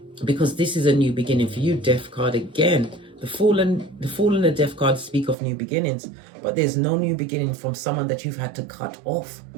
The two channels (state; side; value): drops out; left; at 5.4 s